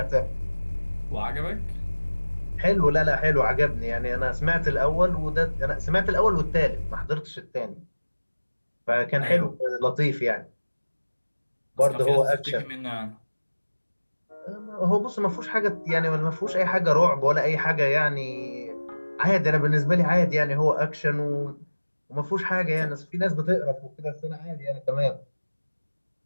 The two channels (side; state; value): both; inverted; correlation -1.00